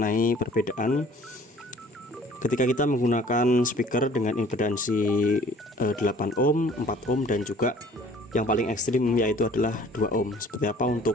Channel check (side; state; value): both; normal; correlation 0.52